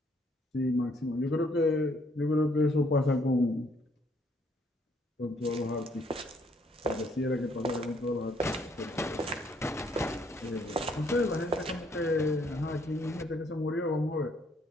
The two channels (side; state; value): both; normal; correlation 0.67